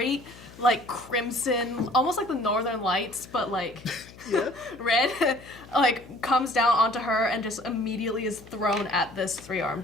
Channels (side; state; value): left; noise; hum, 20 dB below the sound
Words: like crimson, almost like the Northern Lights, but like red, like comes down onto her and just immediately is thrown at this